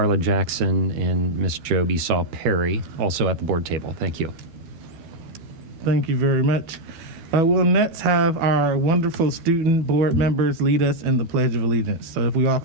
Jackson and Ms. Job Esau Perry, also at the board table. Thank you. Thank you very much. We'll next have our wonderful student board members lead us in the Pledge of Allegiance. So if we all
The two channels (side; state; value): left; late; 12 ms